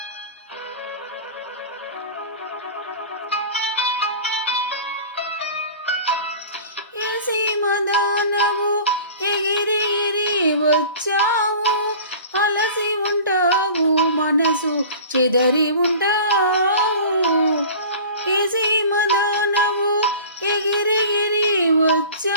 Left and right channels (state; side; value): inverted; both; correlation -0.40